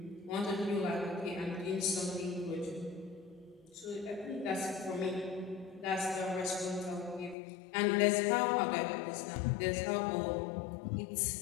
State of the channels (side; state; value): right; drops out; at 7.4 s